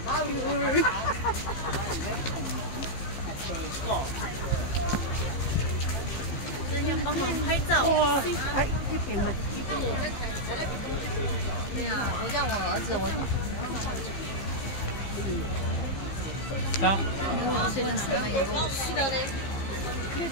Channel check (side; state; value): right; late; 15 ms